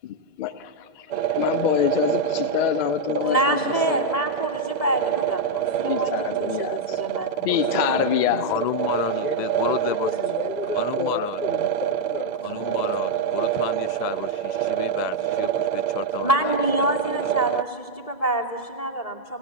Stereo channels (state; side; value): late; right; 2.0 ms